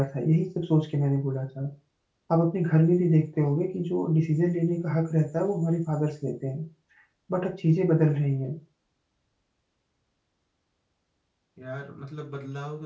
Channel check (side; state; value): both; identical; correlation 1.00